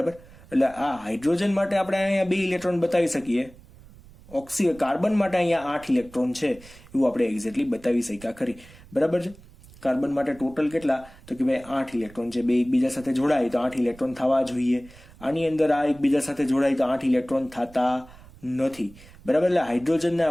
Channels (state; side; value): noise; right; rumble, 22 dB below the sound